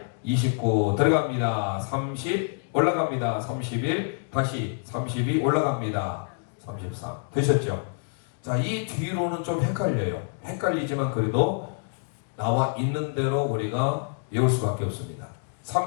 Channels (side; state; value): right; silent; digital silence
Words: 29 들어갑니다. 30 올라갑니다. 31 다시 32 올라갑니다. 33 되셨죠? 자, 이 뒤로는 좀 헷갈려요. 헷갈리지만 그래도 나와 있는 대로 우리가 외울 수밖에 없습니다.